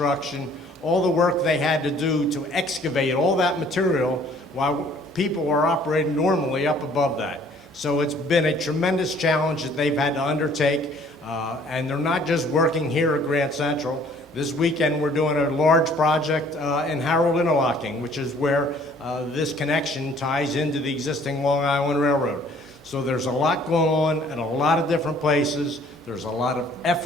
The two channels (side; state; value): both; normal; correlation 0.57